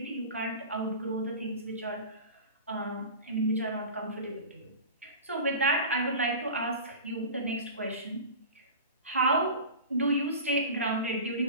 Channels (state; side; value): inverted; both; correlation -0.33